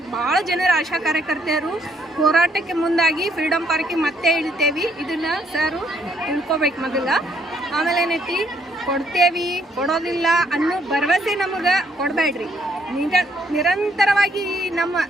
ಭಾಳ ಜನರ ಆಶಾ ಕಾರ್ಯಕರ್ತರು ಹೋರಾಟಕ್ಕೆ ಮುಂದಾಗಿ ಫ್ರೀಡಮ್ ಪಾರ್ಕಿಗೆ ಮತ್ತೆ ಇಳ್ತೇವೆ. ಇದನ್ನು ಸರು ತಿಳ್ಕೊಬೇಕು ಮೊದಲ. ಆಮೇಲೆ ಏನೈತಿ, ಕೊಡ್ತೇವಿ ಕೊಡೋದಿಲ್ಲ ಅನ್ನೋ ಭರವಸೆ ನಮಗೆ ಕೊಡಬೇಡ್ರಿ. ನಿರಂತರವಾಗಿ ನಮ್ಮ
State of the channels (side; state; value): both; normal; correlation 0.69